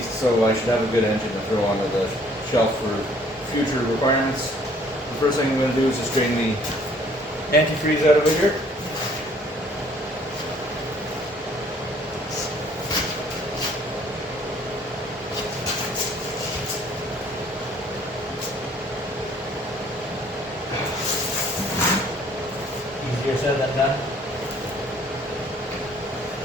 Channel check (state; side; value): normal; both; correlation 0.59